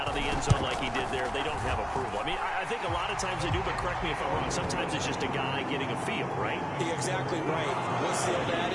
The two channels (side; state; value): both; identical; correlation 1.00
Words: of the end zone like he did there, they don't have approval. I mean, I think a lot of times they do, but correct me if I'm wrong. Sometimes it's just a guy getting a feel, right? You're exactly right. What's the old